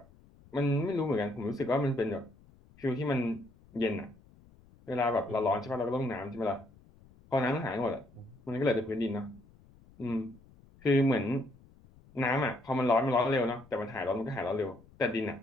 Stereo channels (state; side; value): noise; left; rumble, 26 dB below the sound